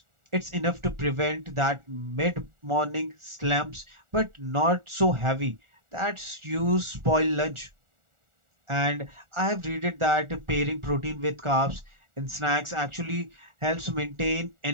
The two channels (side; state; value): left; late; 1.4 ms